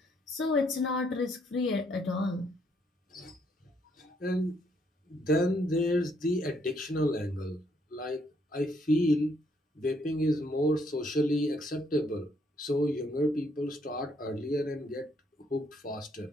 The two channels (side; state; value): both; normal; correlation 0.71